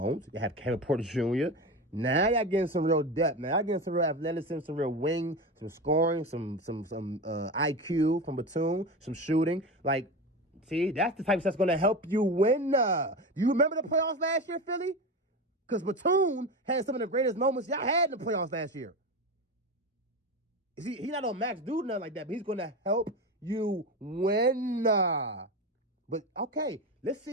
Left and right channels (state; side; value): normal; both; correlation 0.23